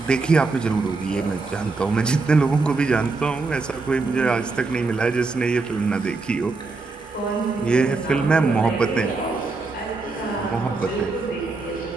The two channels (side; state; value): left; quieter; 3.8 dB